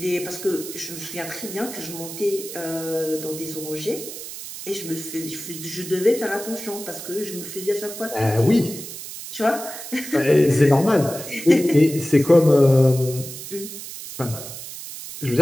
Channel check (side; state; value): right; noise; hiss, 11 dB below the sound